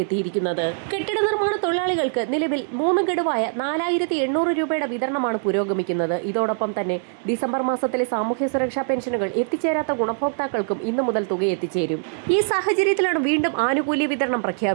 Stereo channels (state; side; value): silent; left; 64 dB below the other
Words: എത്തിയിരിക്കുന്നത്. കെട്ടിട നിർമ്മാണ തൊഴിലാളികൾക്ക് നിലവിൽ 3 ഗഡുവായ 4800 രൂപയുടെ വിതരണമാണ് പുരോഗമിക്കുന്നത്. ഇതോടൊപ്പം തന്നെ ഡിസംബർ മാസത്തിലെ സാമൂഹ്യ സുരക്ഷാ പെൻഷനുകൾ എത്തിച്ചേരാത്ത ഗുണഭോക്താക്കൾക്കും ഇന്നു മുതൽ തുക എത്തിച്ചേരും. ഈ സാഹചര്യത്തിലാണ് വീണ്ടും ആനുകൂല്യ വിതരണം